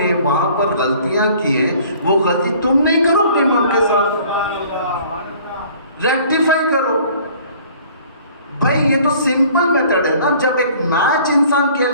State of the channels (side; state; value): both; inverted; correlation -0.53